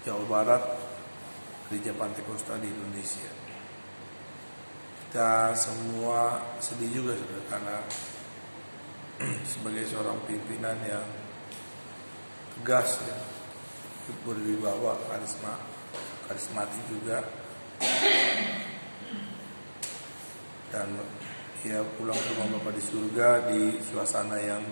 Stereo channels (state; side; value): inverted; both; correlation -1.00